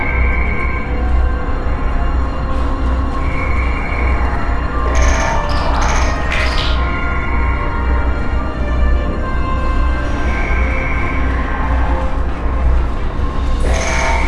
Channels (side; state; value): both; identical; correlation 1.00